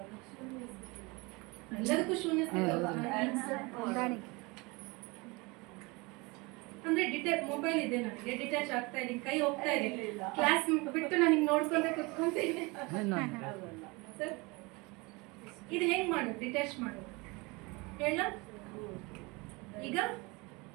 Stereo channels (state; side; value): quieter; left; 26.0 dB